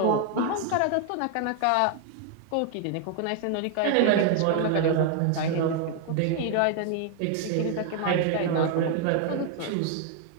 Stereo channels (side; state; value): both; different; correlation 0.00